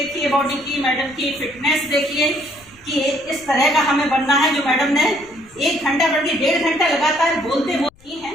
बॉडी की, मैडम की फिटनेस देखिए कि इस तरह का हमें बनना है। जो मैडम ने 1 घंटा बल्कि 1.5 घंटा लगातार बोलते हैं।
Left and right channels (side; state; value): left; noise; rumble, 28 dB below the sound